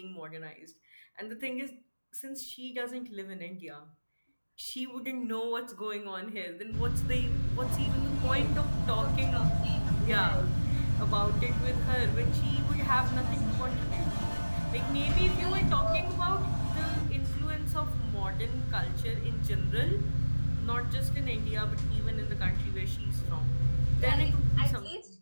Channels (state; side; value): inverted; both; correlation -1.00